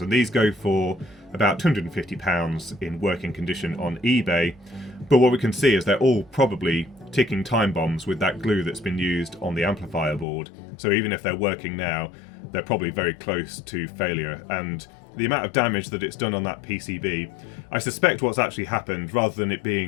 and these go for about £250 in working condition on eBay. But what we can see is they're all probably ticking time bombs with that glue that's been used on the amplifier board. So even if they're working now, they're probably very close to failure. And the amount of damage that it's done on that PCB, I suspect what's actually happened, rather than it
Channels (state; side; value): drops out; right; at 10.2 s